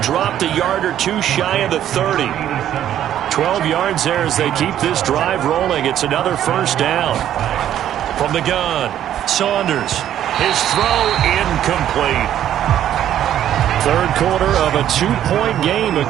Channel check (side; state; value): left; quieter; 11.1 dB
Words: a yard or 2 shy of the 30. 12 yards there as they keep this drive rolling. It's another 1st down. From the gun, Saunders. His throw incomplete. Third quarter of a 2-point game. A